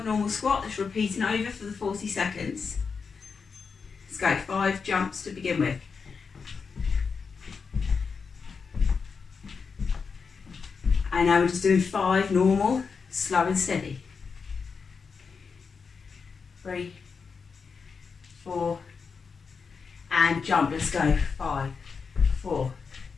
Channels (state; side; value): quieter; right; 5.4 dB